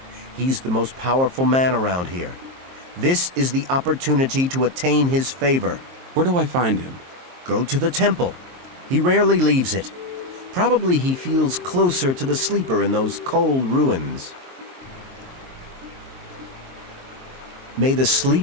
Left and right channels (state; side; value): late; left; 23 ms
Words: He's the most powerful man around here. This is the opportunity to attain his favor. Where do I find him? Go to the temple. He rarely leaves it. Probably he feels closer to the Sleeper in those cold ruins. May the